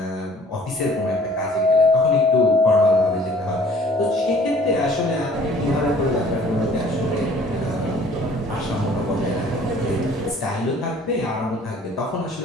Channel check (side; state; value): both; normal; correlation 0.54